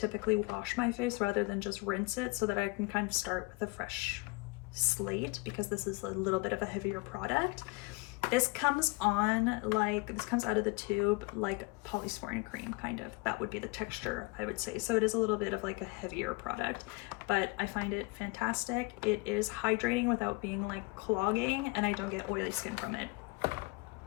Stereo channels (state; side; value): quieter; right; 26.1 dB